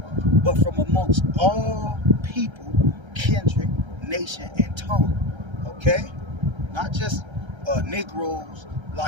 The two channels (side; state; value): left; late; 1.3 ms